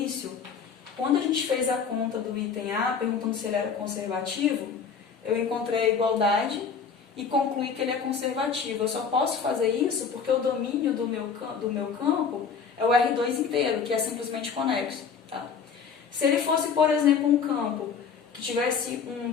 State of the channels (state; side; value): quieter; right; 6.2 dB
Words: quando a gente fez a conta do item A, perguntando se ele era conservativo, eu encontrei a igualdade e concluí que ele é conservativo. Eu só posso fazer isso porque o domínio do meu campo é o R2 inteiro, que é simplesmente conexo. Tá? Se ele fosse, por exemplo, um campo que tivesse um